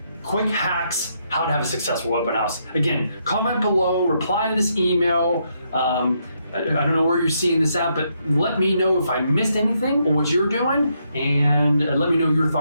Quick hacks, how to have a successful open house. Again, comment below, reply to this email. I don't know where you're seeing this at, but let me know if I missed anything or what you're doing, and let me know your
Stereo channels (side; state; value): both; inverted; correlation -0.77